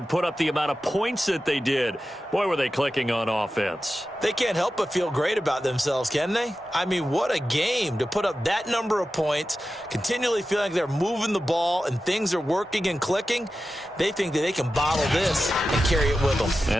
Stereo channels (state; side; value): normal; both; correlation 0.93